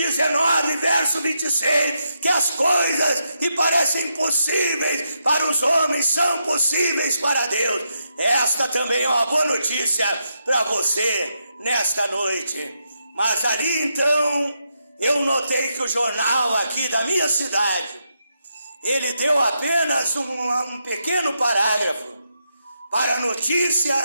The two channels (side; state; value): both; inverted; correlation -0.82